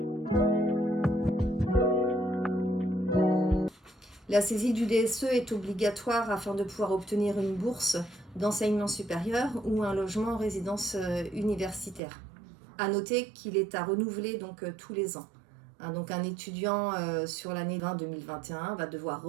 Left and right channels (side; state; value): left; drops out; at 12.0 s